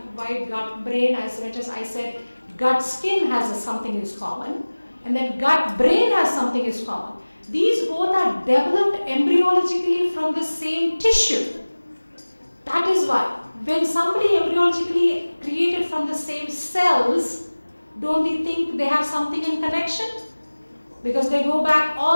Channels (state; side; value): inverted; both; correlation -1.00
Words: why gut brain, as much as I said gut skin has something is common, and then gut brain has something is common. These both are developed embryologically from the same tissue. That is why when somebody embryologically created from the same cells, don't we think they have something in connection? Because they go back